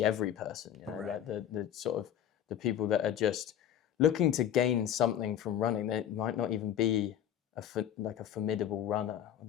every person, like the sort of the people that are just looking to gain something from running. They might not even be a formidable runner, or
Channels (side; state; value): right; quieter; 10.2 dB